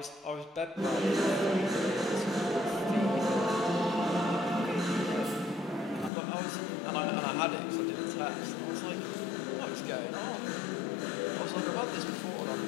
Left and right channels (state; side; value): drops out; right; at 6.1 s